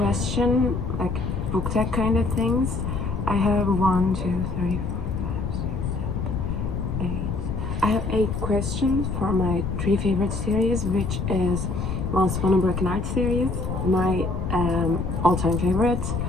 book tag kind of things. I have 1, 2, 3, 4, 5, 6, 7, 8. I have 8 questions for my 3 favorite series, which is Once Upon a Broken Heart series, my all-time favorite,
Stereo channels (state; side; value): noise; left; rumble, 3 dB below the sound